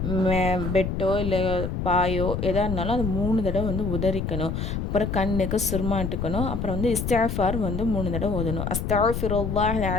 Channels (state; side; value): noise; left; rumble, 3 dB below the sound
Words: பெட்டோ இல்லை பாயோ எதாக இருந்தாலும் அது 3 தடவை உதறிக்கணும். அப்புறம் கண்ணுக்கு சுருமாட்டுக்கணும். அப்புறம் இஸ்திஃபார் 3 தடவை ஓதணும். அஸ்தக்ஃபிருல்லாஹல்